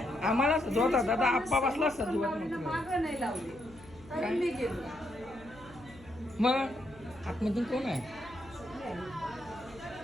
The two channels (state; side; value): noise; left; hum, 22 dB below the sound